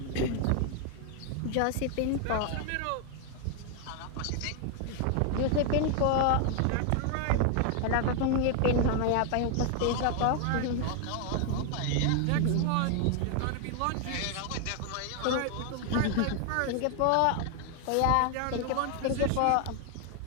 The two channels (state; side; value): different; both; correlation 0.00